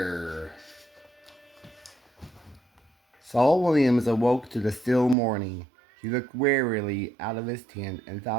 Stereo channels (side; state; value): left; drops out; at 5.2 s